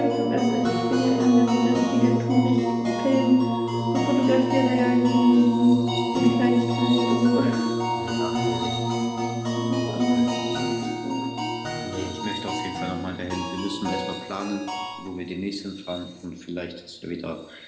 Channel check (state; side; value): identical; both; correlation 1.00